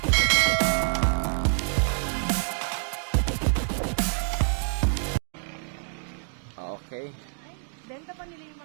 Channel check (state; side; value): silent; left; 57 dB below the other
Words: Okay. Benta pa nila yung